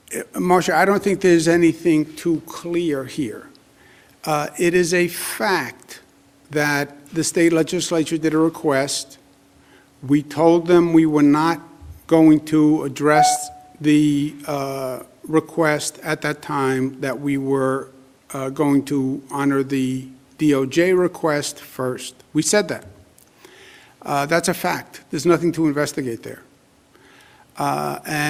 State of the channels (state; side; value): identical; both; correlation 1.00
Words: Marcia, I don't think there's anything too clear here. It is a fact that the state legislature did a request. We told them we were not going to address the request at that time, that we were going to honor the DOJ request first. We said that. That's a fact. There's nothing to investigate there.